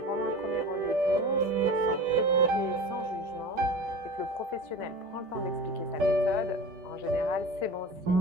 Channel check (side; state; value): left; late; 5.1 ms